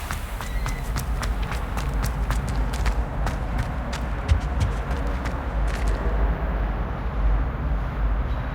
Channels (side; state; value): both; identical; correlation 1.00